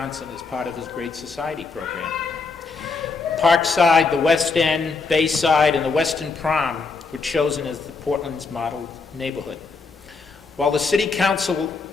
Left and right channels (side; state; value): right; quieter; 4.4 dB